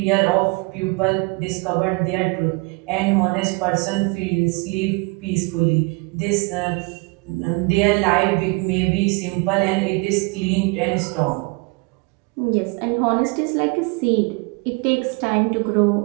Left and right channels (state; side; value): quieter; left; 28.5 dB